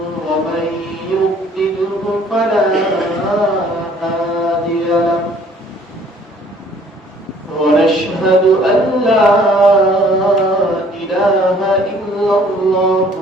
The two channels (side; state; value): both; normal; correlation 0.57